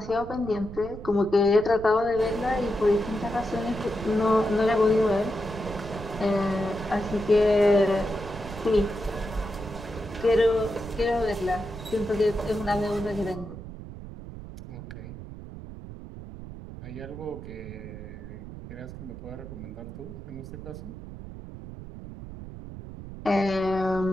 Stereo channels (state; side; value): noise; right; rumble, 12 dB below the sound